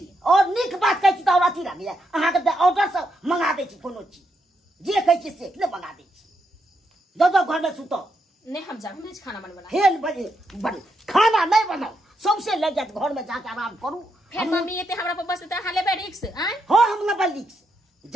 और निक बात कहै छी त अथी लागे अहाँ के ऑर्डर से मंगा दै छी कोनो चीज जे कहै छी से ले मंगा दै छी। दो घर में सुतो नहीं हम जा खाना बनवाला हेल बजे खाना नहीं बनाओ सबसे लग जाए घर में जाके आराम करू फिर मम्मी एते हमरा पर बस त हाले बे रिक्स आय हो हम लेबै लिक्स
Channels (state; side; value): normal; both; correlation 0.81